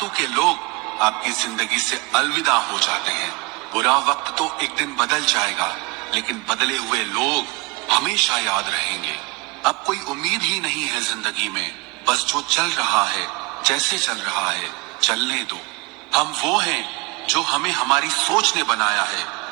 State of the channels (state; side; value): quieter; left; 25.9 dB